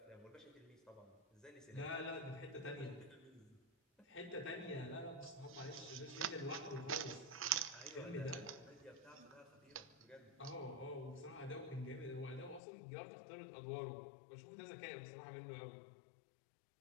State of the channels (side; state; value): right; drops out; at 12.6 s